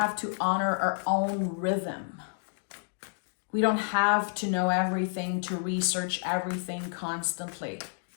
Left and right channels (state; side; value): silent; right; digital silence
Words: to honor our own rhythm. We don't have to know everything, to research everything constantly.